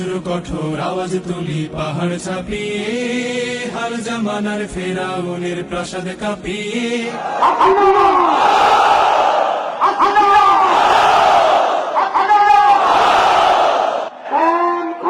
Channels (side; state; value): both; identical; correlation 1.00